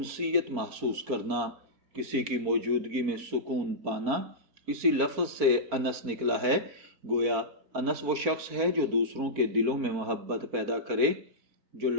محسوس کرنا، کسی کی موجودگی میں سکون پانا۔ اسی لفظ سے انس نکلا ہے۔ گویا انس وہ شخص ہے جو دوسروں کے دلوں میں محبت پیدا کرے، جو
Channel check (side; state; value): left; late; 4.4 ms